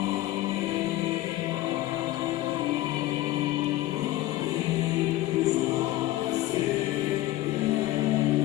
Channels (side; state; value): right; quieter; 16.2 dB